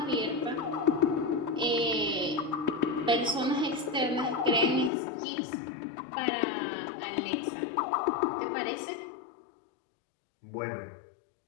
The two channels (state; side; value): drops out; right; at 4.9 s